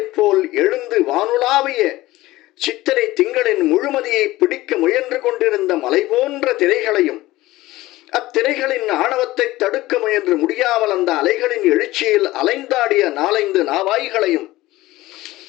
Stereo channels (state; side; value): quieter; right; 17.7 dB